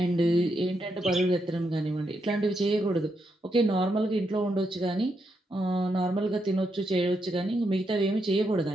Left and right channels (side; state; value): both; normal; correlation 0.81